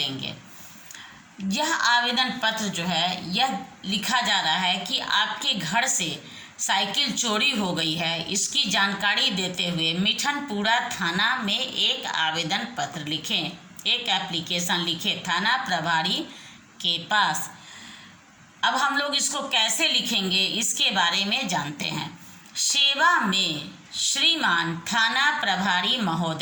यह आवेदन पत्र जो है यह लिखा जा रहा है कि आपके घर से साइकिल चोरी हो गई है, इसकी जानकारी देते हुए मिठनपुरा थाना में एक आवेदन पत्र लिखें, एक एप्लीकेशन लिखें थाना प्रभारी के पास। अब हम लोग इसको कैसे लिखेंगे इसके बारे में जानते हैं। सेवा में श्रीमान थाना प्रभारी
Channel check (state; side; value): identical; both; correlation 1.00